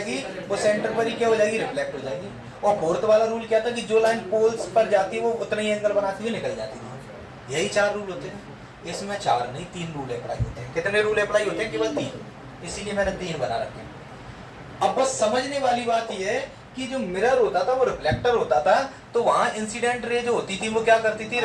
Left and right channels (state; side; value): identical; both; correlation 1.00